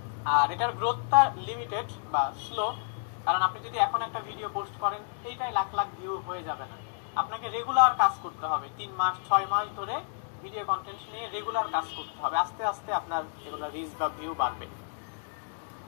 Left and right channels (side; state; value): right; silent; digital silence